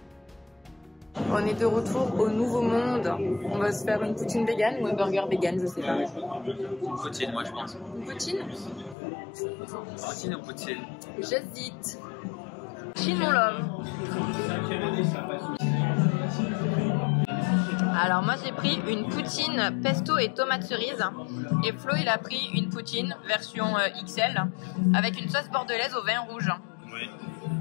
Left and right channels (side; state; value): right; drops out; at 9.0 s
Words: On est de retour au Nouveau Monde. On va se faire une poutine vegan ou un burger vegan, je sais pas. Poutine, moi je pense. Une poutine? Poutine ou poutine? J'hésite. Chine mon love. Alors moi j'ai pris une poutine pesto et tomate cerise et Flo il a pris une poutine version XL avec une sauce bordelaise au vin rouge. Oui.